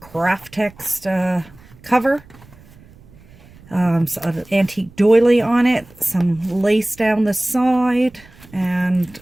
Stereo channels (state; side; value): noise; right; rumble, 24 dB below the sound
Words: text cover, an antique doily on it, some lace down the side, and